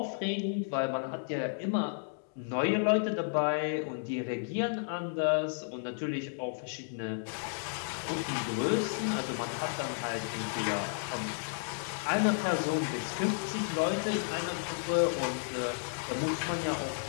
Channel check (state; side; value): silent; right; digital silence